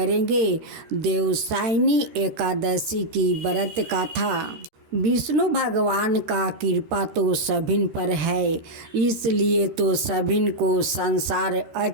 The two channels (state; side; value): late; left; 13 ms